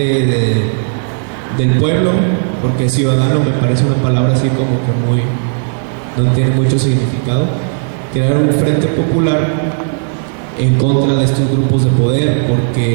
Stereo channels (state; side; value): silent; left; digital silence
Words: del pueblo, porque ciudadano me parece una palabra así como que muy, no tiene mucho significado. Crear un frente popular en contra de estos grupos de poder,